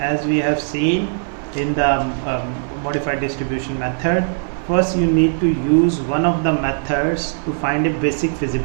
we have seen in the modified distribution method, first you need to use one of the methods to find a basic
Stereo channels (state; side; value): silent; left; 59 dB below the other